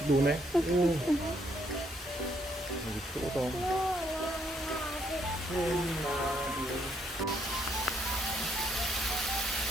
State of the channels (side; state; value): both; normal; correlation 0.71